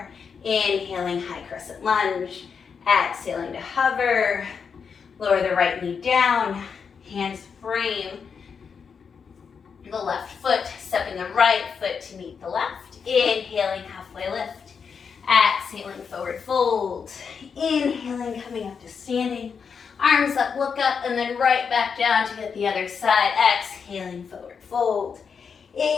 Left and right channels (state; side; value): quieter; right; 6.2 dB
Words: Inhaling, high crescent lunge. Exhaling to hover. Lower the right knee down. Hands frame the left foot. Stepping the right foot to meet the left. Inhaling, halfway lift. Exhaling, forward fold. Inhaling, coming up to standing. Arms up, look up, and then right back down to get the other side. Exhaling, forward fold.